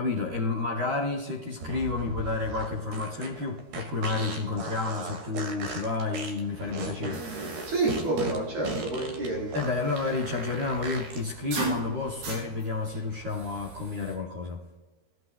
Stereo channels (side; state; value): left; late; 13 ms